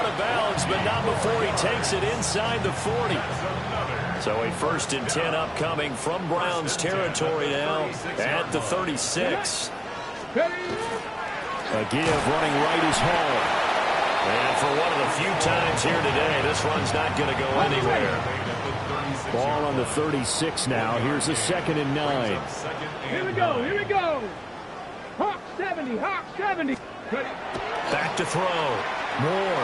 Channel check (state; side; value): identical; both; correlation 1.00